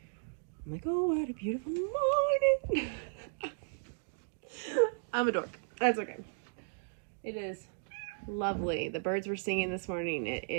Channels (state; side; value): silent; left; digital silence